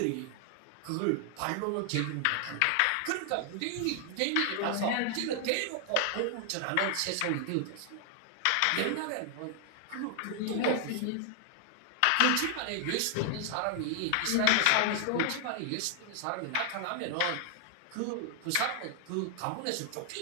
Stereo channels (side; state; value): both; different; correlation 0.00